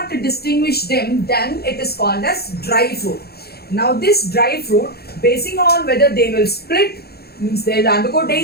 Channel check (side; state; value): right; late; 0.46 ms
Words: distinguish them, then it is called as dry fruit. Now this dry fruit, basing on whether they will split, means they will undergo